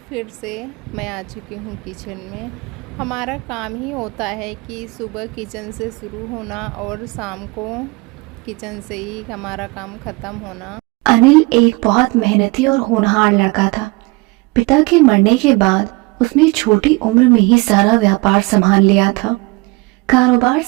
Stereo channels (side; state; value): left; quieter; 25.7 dB